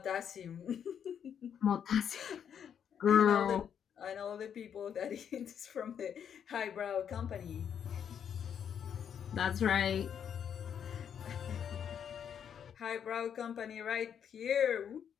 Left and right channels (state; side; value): quieter; right; 8.3 dB